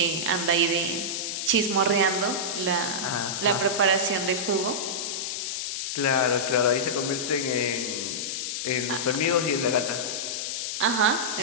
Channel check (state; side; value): noise; left; hiss, 3 dB below the sound